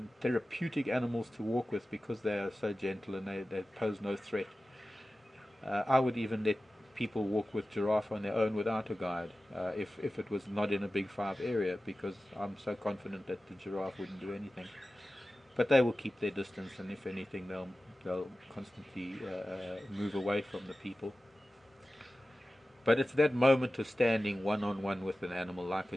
therapeutic animals to walk with, because they are so gentle and they pose no threat. I would even let people walk with giraffe on their own without a guide, if it was not in a Big 5 area, because I'm so confident that the giraffe wouldn't do anything. But they will keep their distance, and if anything, they'll constantly move away from the people. But it's that moment of standing one-on-one with an animal like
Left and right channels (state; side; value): normal; both; correlation 0.95